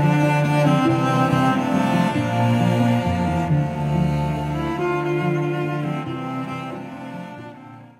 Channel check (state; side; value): identical; both; correlation 1.00